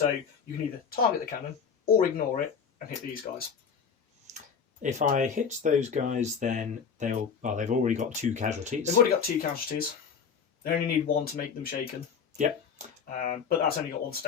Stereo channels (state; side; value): quieter; right; 6.6 dB